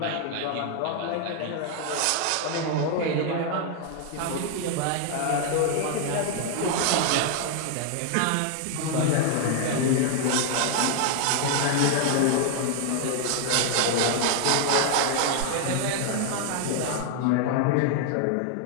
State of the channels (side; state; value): both; different; correlation 0.00